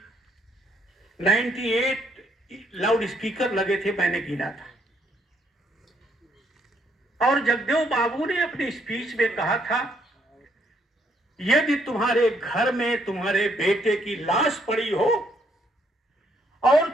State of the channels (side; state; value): both; normal; correlation 0.71